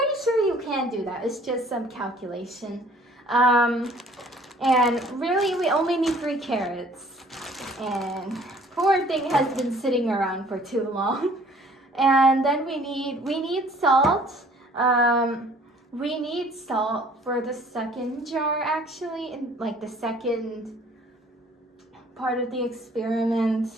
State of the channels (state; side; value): normal; both; correlation 0.55